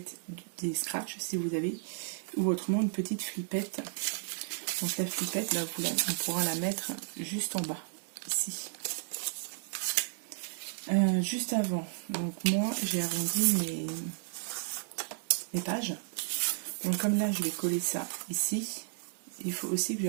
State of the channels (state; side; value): silent; left; digital silence